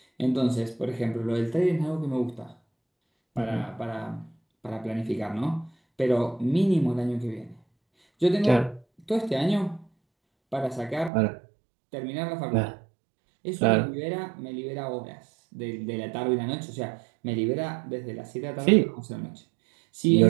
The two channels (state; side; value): drops out; left; at 11.1 s